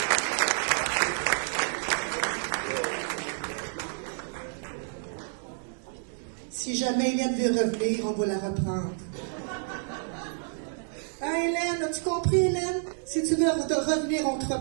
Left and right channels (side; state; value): left; silent; digital silence